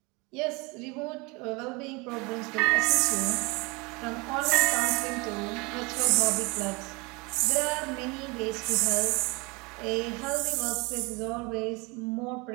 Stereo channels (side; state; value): left; quieter; 27.0 dB